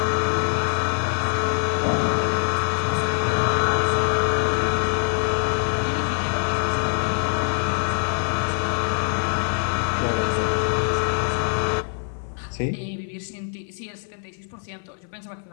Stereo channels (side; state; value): right; silent; 56 dB below the other